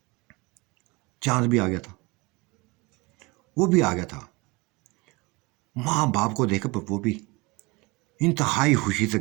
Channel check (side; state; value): left; quieter; 25.2 dB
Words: चांद भी आ गया था, वो भी आ गया था। माँ बाप को देखकर वो भी इंतहाई खुशी से